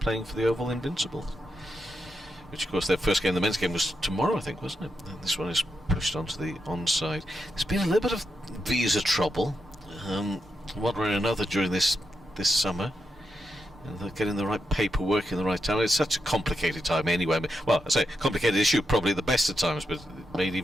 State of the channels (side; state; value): both; normal; correlation 0.85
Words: for the Oval Invincibles. Which, of course, their first game, the men's game, was tomorrow, I think, wasn't it? And this one is pushed onto the onside. There's been a little bit of visa trouble, one way or another, during this summer. And they're getting the right paperwork in the right time. It's such a complicated time anyway. Well, I say complicated issue, probably the best of times, but made